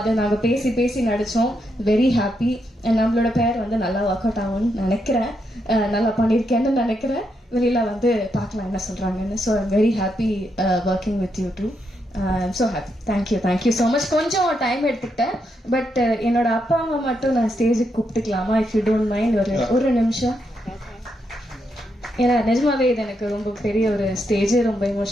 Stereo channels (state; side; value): normal; both; correlation 0.81